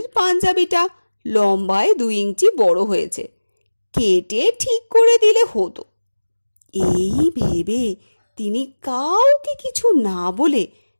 পাঞ্জাবিটা লম্বায় 2 ইঞ্চি বড় হয়েছে, কেটে ঠিক করে দিলে হতো। এই ভেবে তিনি কাউকে কিছু না বলে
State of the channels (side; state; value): both; inverted; correlation -1.00